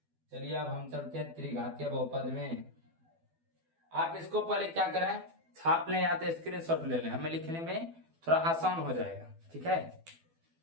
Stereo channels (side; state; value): left; late; 12 ms